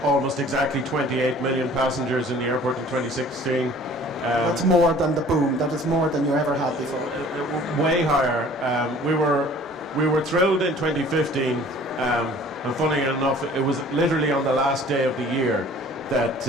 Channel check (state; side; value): normal; both; correlation 0.50